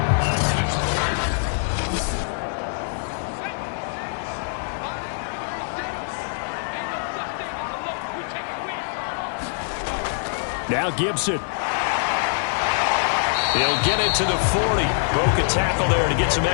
Now Gibson. He'll get it to the 40. Broke a tackle there to get some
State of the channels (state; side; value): silent; right; digital silence